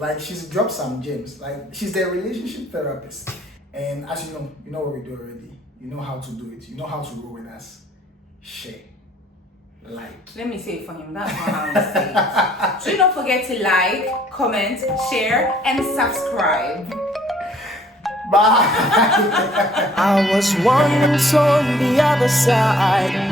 she's dropped some gems. Like, she's the relationship therapist, and as you know what we do already. You know how to do it. You know how to roll with us. Share, like. Let me say it for him. That's not how I say it. Do not forget to like, comment, share, and subscribe. Bye. I was once on the other side.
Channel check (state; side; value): normal; both; correlation 0.60